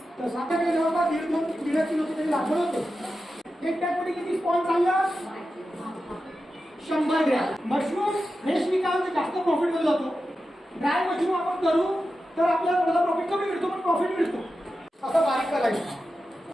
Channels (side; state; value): both; normal; correlation 0.91